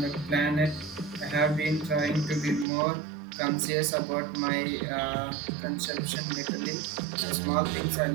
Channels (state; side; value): drops out; left; at 2.7 s